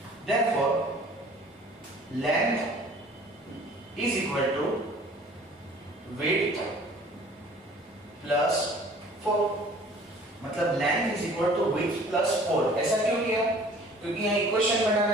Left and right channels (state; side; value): normal; both; correlation 0.50